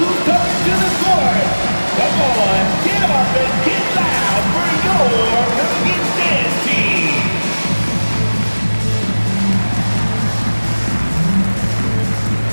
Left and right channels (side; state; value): both; inverted; correlation -1.00